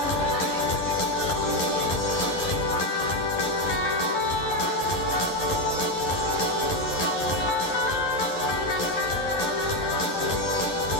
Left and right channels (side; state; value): right; late; 11 ms